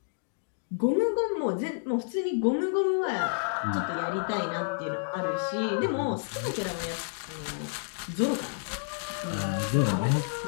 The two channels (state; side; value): silent; right; digital silence